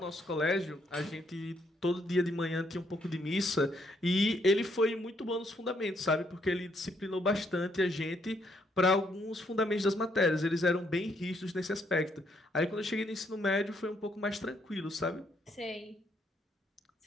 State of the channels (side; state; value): both; normal; correlation 0.72